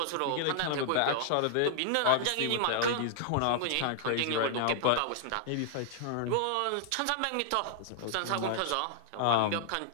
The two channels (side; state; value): both; different; correlation -0.01